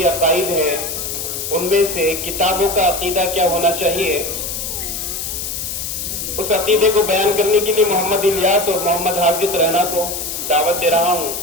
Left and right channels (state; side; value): noise; left; hiss, 5 dB below the sound